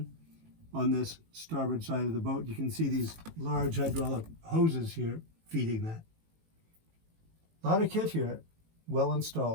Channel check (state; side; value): late; left; 18 ms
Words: on this starboard side of the boat. You can see these large hydraulic hoses here feeding that. A lot of kit here, well